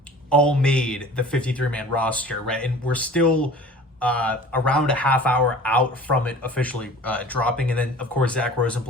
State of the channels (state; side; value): normal; both; correlation 0.44